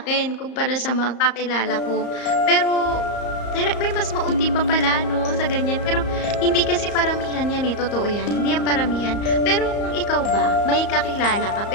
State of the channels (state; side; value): late; right; 34 ms